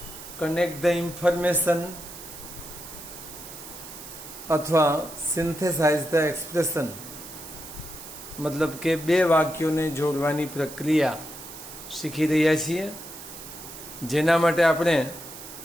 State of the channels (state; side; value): noise; right; hiss, 13 dB below the sound